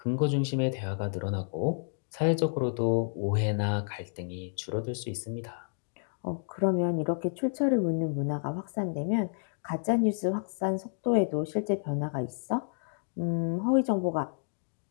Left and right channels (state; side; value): silent; right; digital silence